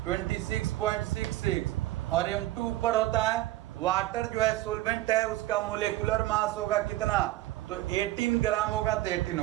26.66, और M2 ऊपर होता है, वाटर जो है सोलवेंट है उसका मोलेकुलर मास होगा कितना, तो 18 ग्राम होगा, तो 18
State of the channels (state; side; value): quieter; left; 16.2 dB